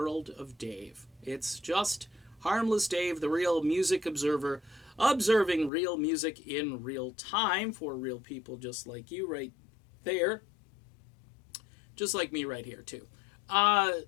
of Dave. It's just harmless Dave, the real music observer, observing real music in real time for real people just like you right there, just like me right here, too.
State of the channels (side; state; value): right; drops out; at 5.7 s